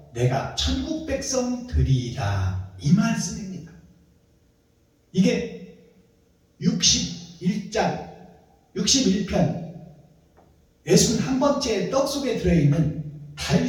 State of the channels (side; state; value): both; identical; correlation 1.00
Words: 내가 천국 백성 되리이다. 이 말씀입니다. 이게 61장 61편 61번째 떡 속에 들어있는